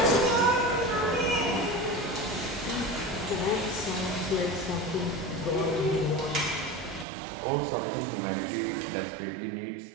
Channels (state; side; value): drops out; left; at 7.1 s